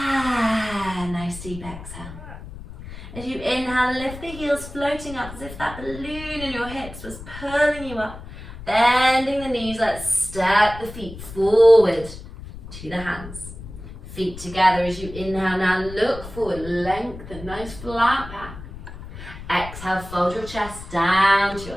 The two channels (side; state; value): left; noise; rumble, 13 dB below the sound